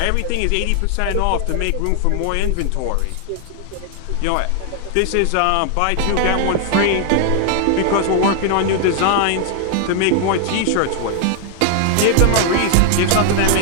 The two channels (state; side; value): different; both; correlation 0.00